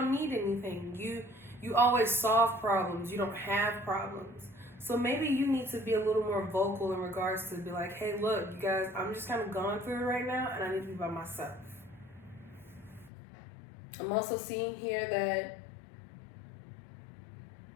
need anything. You always solve problems. You don't have problems. So maybe you need to be a little more vocal in regards to be like, hey, look, you guys, I'm just kind of going through it right now, and I need to be by myself. I'm also seeing here that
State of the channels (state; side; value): drops out; right; at 13.1 s